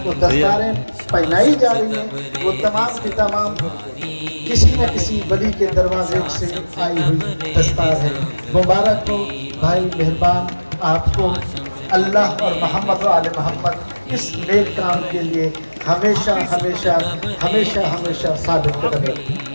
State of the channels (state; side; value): inverted; both; correlation -1.00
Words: کو دستاریں پہنائی جا رہی ہیں وہ تمام کی تمام کسی نہ کسی ولی کے دروازے سے آئی ہوئی دستار ہے۔ مبارک ہو بھائی مہربان، آپ کو اللہ اور محمد و آل محمد اس نیک کام کے لیے ہمیشہ ہمیشہ ہمیشہ ہمیشہ ثابت قدم